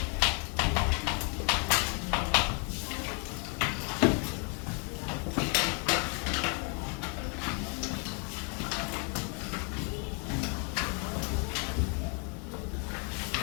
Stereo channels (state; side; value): quieter; right; 38.0 dB